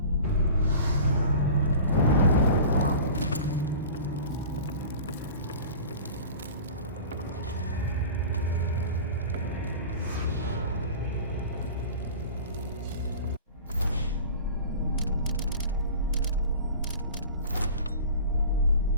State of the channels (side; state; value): both; inverted; correlation -0.39